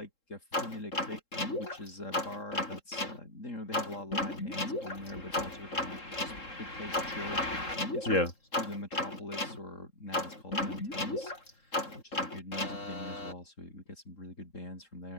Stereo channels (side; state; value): right; late; 3.7 ms